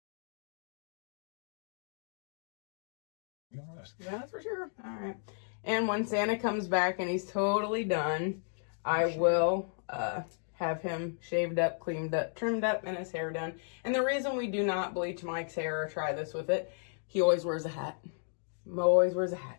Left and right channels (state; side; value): silent; right; digital silence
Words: Yeah, that's for sure. All right. And when Santa comes back and he's totally done, I will have him shaved up, cleaned up, trimmed up, and his hair done. And the reason we do not bleach Mike's hair or try this with it, he always wears a hat. Mo always wears a hat.